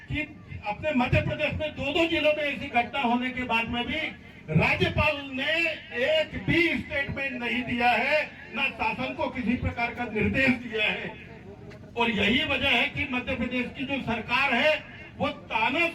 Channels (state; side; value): identical; both; correlation 1.00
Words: कि अपने मध्य प्रदेश में 2-2 जिलों में ऐसी घटना होने के बाद में भी राज्यपाल ने एक भी स्टेटमेंट नहीं दिया है, न शासन को किसी प्रकार का निर्देश दिया है। और यही वजह है कि मध्य प्रदेश की जो सरकार है वो